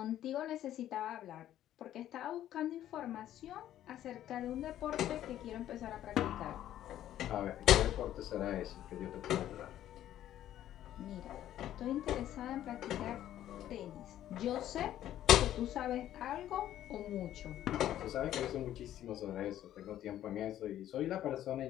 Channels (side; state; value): right; quieter; 12.2 dB